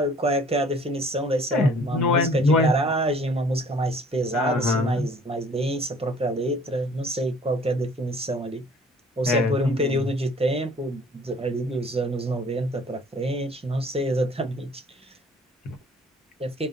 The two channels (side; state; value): both; normal; correlation 0.53